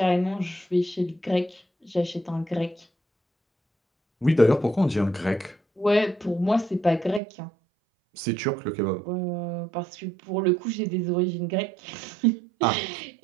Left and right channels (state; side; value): drops out; left; at 7.2 s